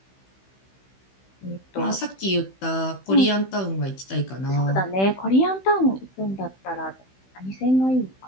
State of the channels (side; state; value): right; late; 16 ms